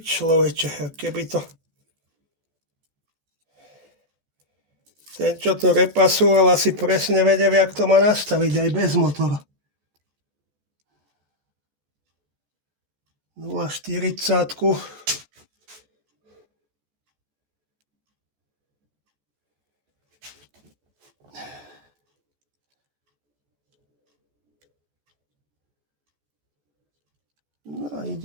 Keby to... Ten, čo to repasoval, asi presne vedel, jak to má nastaviť aj bez motora. 0,40. No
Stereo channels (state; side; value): late; left; 14 ms